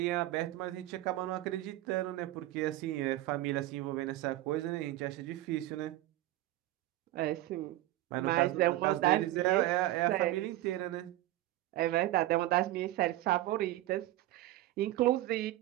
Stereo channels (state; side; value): quieter; left; 15.9 dB